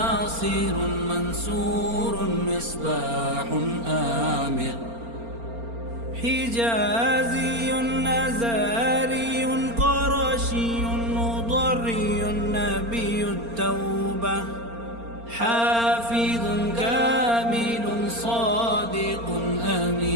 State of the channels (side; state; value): left; late; 4.3 ms